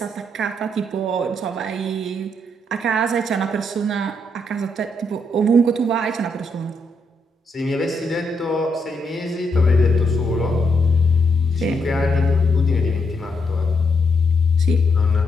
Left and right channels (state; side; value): normal; both; correlation 0.78